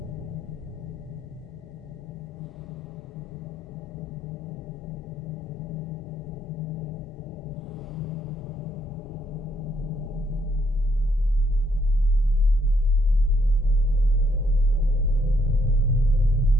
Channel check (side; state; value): both; normal; correlation 0.72